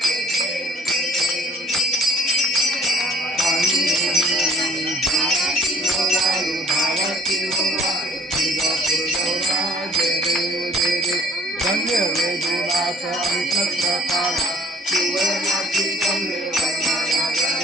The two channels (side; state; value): both; normal; correlation 0.53